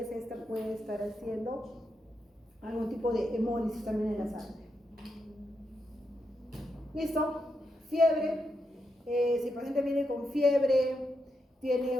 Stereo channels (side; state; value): both; normal; correlation 0.84